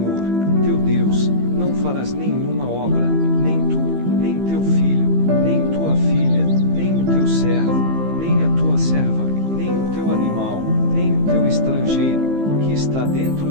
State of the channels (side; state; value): left; late; 15 ms